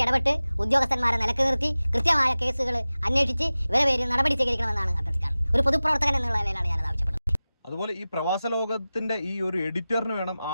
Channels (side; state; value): both; inverted; correlation -0.97